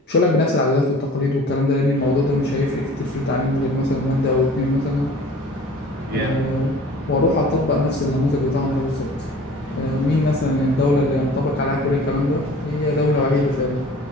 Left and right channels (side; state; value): both; normal; correlation 0.46